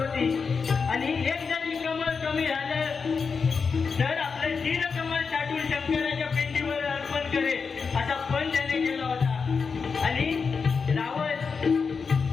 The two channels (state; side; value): quieter; right; 5.3 dB